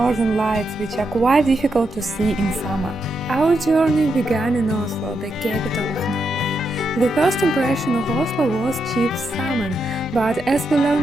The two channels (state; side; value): normal; both; correlation 0.83